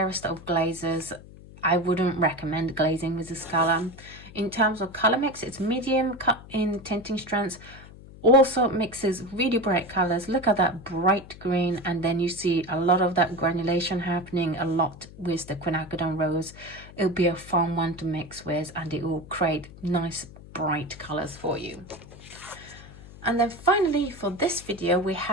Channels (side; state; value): left; noise; hum, 18 dB below the sound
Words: of glazes. I wouldn't recommend glazing with this color. In terms of color mix, it's medium in tinting strands. Also mixes really bright colors. Look at that bright green, and then you see a lot of that granulation happening a lot with the quinacridone rose. It'll be a fun one to mix with, and it will create nice bright colors for you. And then finally for this video, we